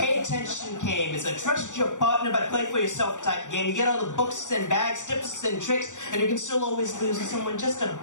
attention game. It's a trust your partner but play for yourself type game. You get all the books and bags, tips and tricks, and you can still always lose to someone just a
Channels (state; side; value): late; right; 0.86 ms